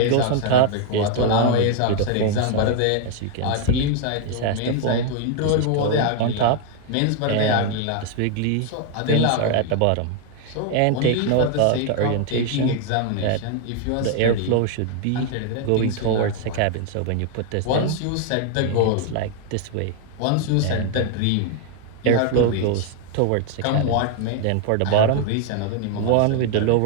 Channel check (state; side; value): different; both; correlation 0.00